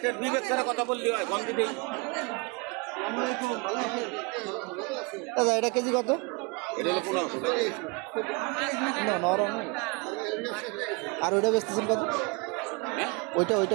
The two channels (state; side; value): quieter; left; 29.6 dB